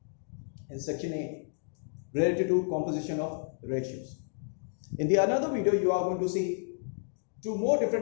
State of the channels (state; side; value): silent; right; digital silence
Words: in section A related to composition of ratios. In the another video, you are going to see two more